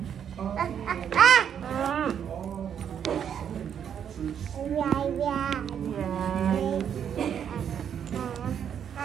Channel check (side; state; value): left; quieter; 8.5 dB